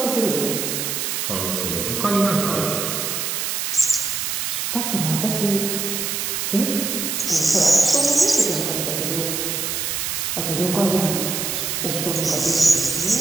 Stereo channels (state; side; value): noise; right; hiss, 1 dB below the sound